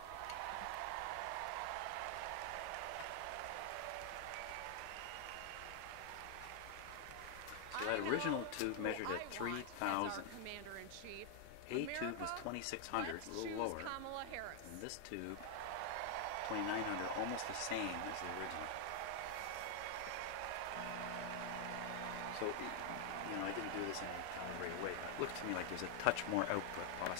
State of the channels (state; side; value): different; both; correlation 0.00